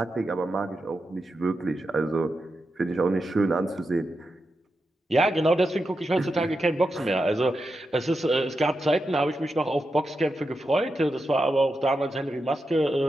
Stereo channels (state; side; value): normal; both; correlation 0.88